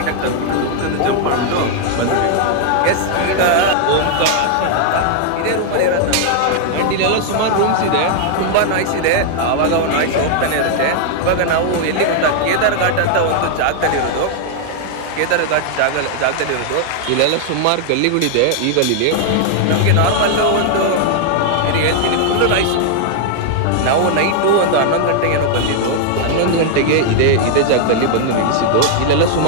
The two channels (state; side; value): different; both; correlation 0.00